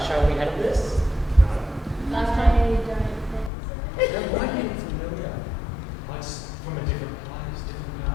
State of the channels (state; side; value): drops out; right; at 3.5 s